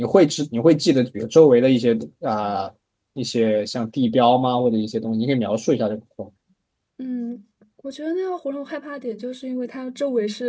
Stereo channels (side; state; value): both; identical; correlation 1.00